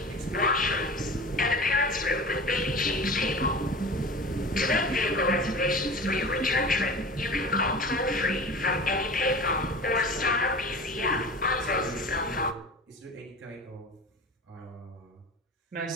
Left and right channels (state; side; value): normal; both; correlation 0.35